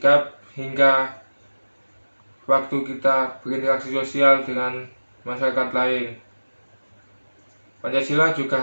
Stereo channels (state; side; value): inverted; both; correlation -1.00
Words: hingga waktu kita berinteraksi sosial dengan masyarakat lain. Pancasila juga